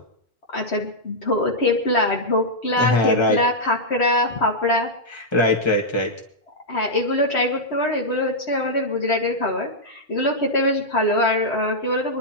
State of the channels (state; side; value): normal; both; correlation -0.07